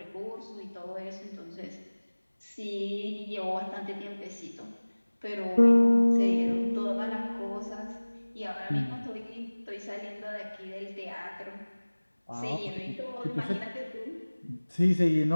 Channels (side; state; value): both; inverted; correlation -1.00